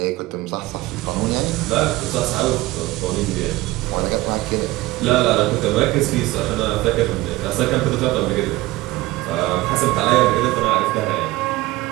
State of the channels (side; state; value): left; quieter; 18.6 dB